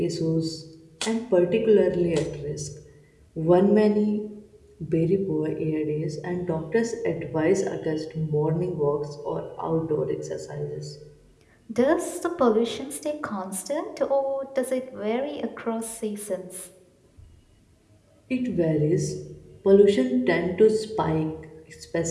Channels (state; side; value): identical; both; correlation 1.00